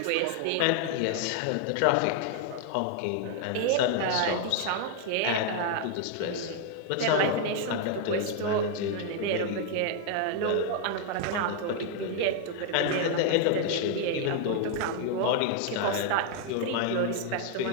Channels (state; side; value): different; both; correlation 0.00